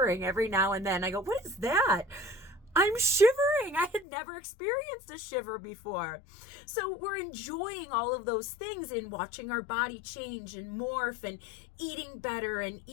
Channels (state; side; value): drops out; right; at 4.0 s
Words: every now and then. I go, what is that? I'm shivering. I had never experienced a shiver before. So we're enjoying all of those things and watching our body change and morph and eating better and